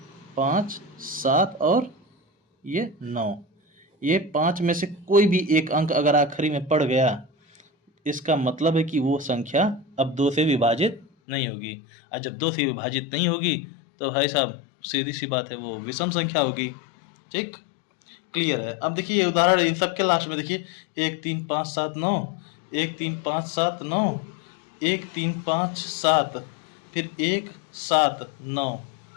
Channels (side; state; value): right; drops out; at 11.1 s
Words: 5, 7 और ये 9। ये 5 में से कोई भी एक अंक अगर आखिरी में पड़ गया, इसका मतलब है कि वो संख्या अब 2 से विभाजित नहीं होगी। और जब 2 से विभाजित नहीं होगी तो भाई साहब सीधी सी बात है, वो विषम संख्या होगी। ठीक, क्लियर है। अब देखिए ये उदाहरण इन सब के लास्ट में देखिए 1, 3, 5, 7, 9, 1, 3, 5, 7, 9, 1, 3, 5, 7, फिर 1, 7, 9